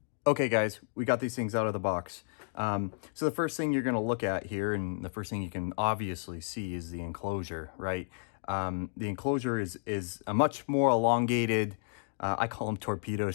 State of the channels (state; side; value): silent; right; digital silence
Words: Okay guys, we got these things out of the box. So the first thing you're going to look at here, and the first thing you can obviously see, is the enclosure, right? The enclosure is a much more elongated, I call them torpedo